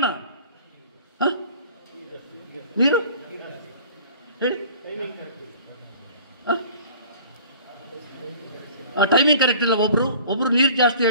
ನೀರು ಹೇಳಿ. ಟೈಮಿಂಗ್ ಕರೆಕ್ಟ್ ಇಲ್ಲ. ಒಬ್ರು ನೀರು ಜಾಸ್ತಿ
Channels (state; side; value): inverted; both; correlation -0.47